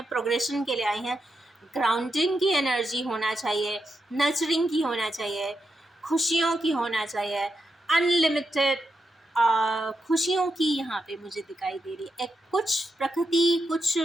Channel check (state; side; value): normal; both; correlation 0.85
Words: प्रोग्रेशन के लिए आई हैं। ग्राउंडिंग की एनर्जी होना चाहिए, नर्चरिंग की होना चाहिए, खुशियों की होना चाहिए, अनलिमिटेड खुशियों की यहाँ पे मुझे दिखाई दे रही है। एक कुछ प्रकृति, कुछ